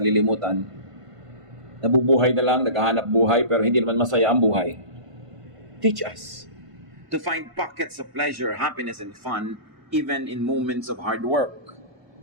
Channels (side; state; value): left; late; 1.5 ms